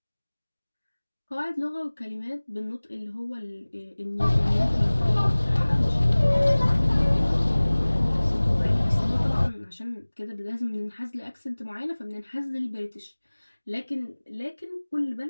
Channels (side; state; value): both; inverted; correlation -1.00